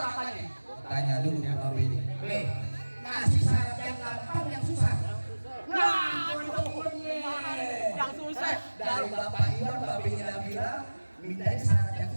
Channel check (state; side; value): inverted; both; correlation -1.00